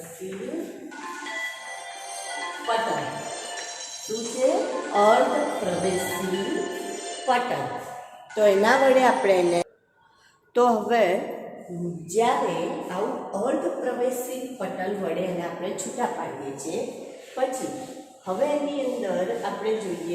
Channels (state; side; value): identical; both; correlation 1.00